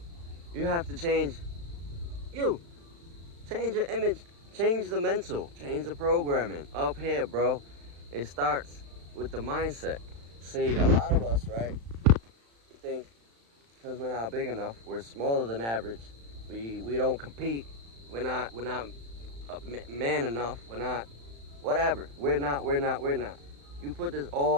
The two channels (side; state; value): left; late; 35 ms